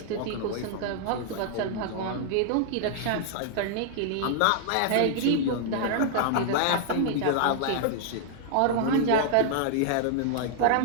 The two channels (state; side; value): different; both; correlation -0.01